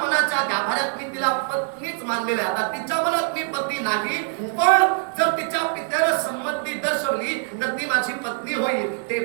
गाभाऱ्यात मी तिला पत्नीच मानलेली. आता तिच्या मनात मी पत्नी नाही, पण जर तिच्या पित्याने संमती दर्शवली तर ती माझी पत्नी होईल.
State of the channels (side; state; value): left; silent; 58 dB below the other